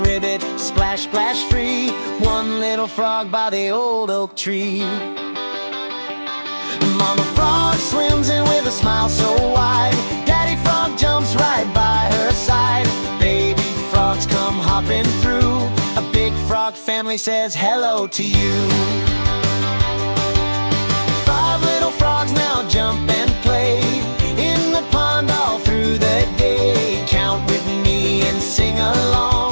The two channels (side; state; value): both; inverted; correlation -1.00